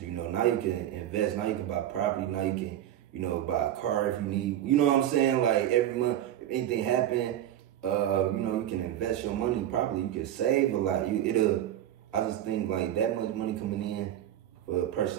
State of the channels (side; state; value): left; quieter; 11.7 dB